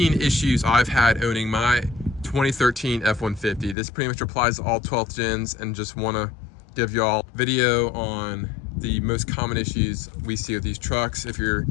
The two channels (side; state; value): right; drops out; at 3.8 s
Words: issues I've had owning my 2013 F-150. This pretty much applies to all 12th gens, and just want to give y'all a video on the most common issues we see with these trucks. If you're